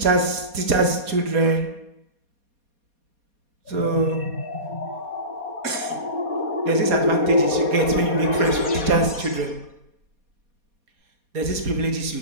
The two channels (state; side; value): late; left; 4.2 ms